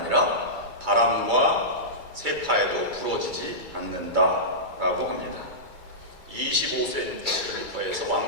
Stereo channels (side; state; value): left; late; 2.3 ms